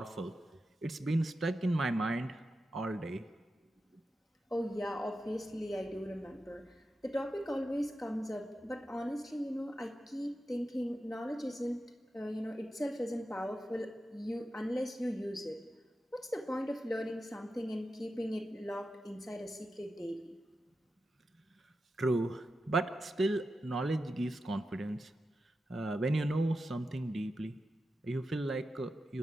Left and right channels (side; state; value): both; normal; correlation 0.90